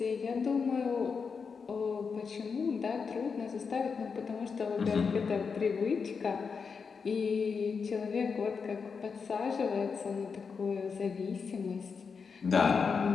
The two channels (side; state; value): right; quieter; 5.5 dB